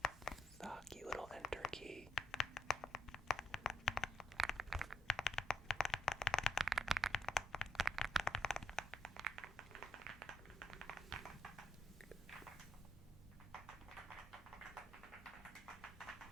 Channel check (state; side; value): normal; both; correlation 0.79